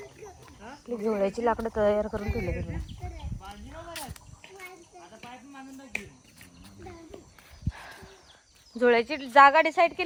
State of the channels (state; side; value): identical; both; correlation 1.00